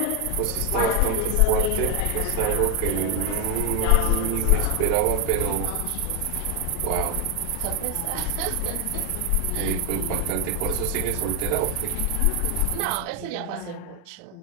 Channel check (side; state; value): both; different; correlation 0.01